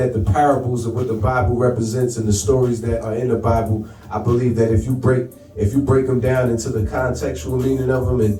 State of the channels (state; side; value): identical; both; correlation 1.00